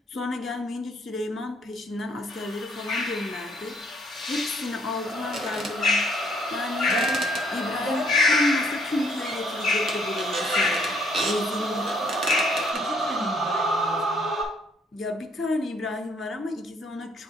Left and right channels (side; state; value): both; normal; correlation 0.66